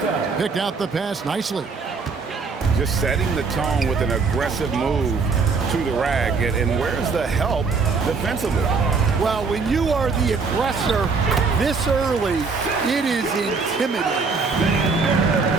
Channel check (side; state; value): left; quieter; 4.7 dB